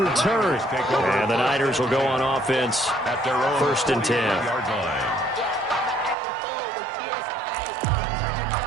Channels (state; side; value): drops out; left; at 6.2 s